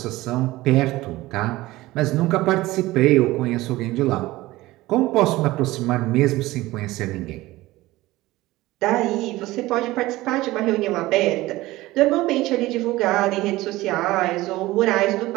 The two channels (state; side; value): quieter; left; 18.3 dB